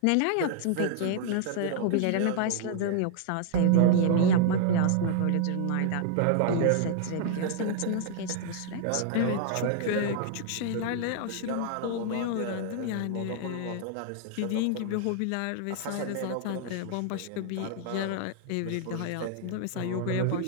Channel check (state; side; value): different; both; correlation -0.01